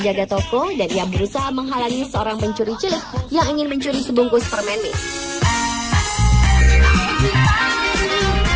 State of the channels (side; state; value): both; identical; correlation 1.00